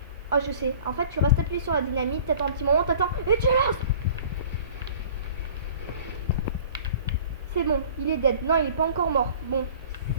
Oh, je sais. En fait, tu restes appuyé sur la dynamite, t'attends un petit moment, t'attends et tu lances. C'est bon, il est dead. Non, il est pas encore mort. Bon,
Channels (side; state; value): both; inverted; correlation -0.46